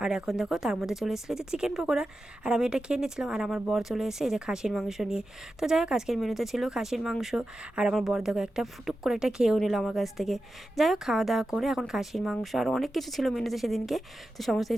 আর এখন দেখো তার মধ্যে চলে এসেছিলো যে চিকেন পকোড়া, আর আমি এটা খেয়ে নিচ্ছিলাম। আর আমার বর চলে এসে এই যে খাসির মাংস নিয়ে। তো যাই হোক আজকের মেনুতে ছিল খাসির মাংস, আর আমার বর দেখো একটা ফুটুক করে একটা খেয়েও নিল আমার কাছ থেকে। যাই হোক খাওয়া দাওয়া করে এখন খাসির মাংস আর অনেক কিছু ছিল মেনুতে সেদিনকে, তো সমস্ত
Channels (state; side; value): normal; both; correlation 0.92